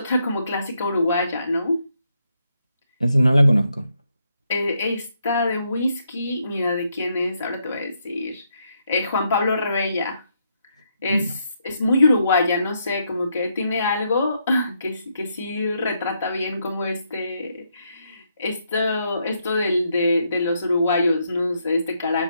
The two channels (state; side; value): inverted; both; correlation -0.77